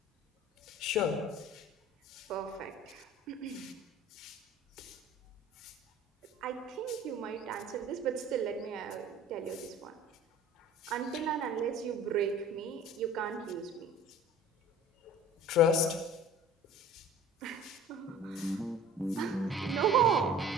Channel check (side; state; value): both; normal; correlation 0.45